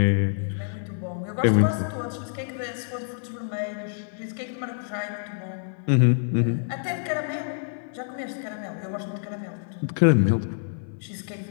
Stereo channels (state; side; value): silent; right; 56 dB below the other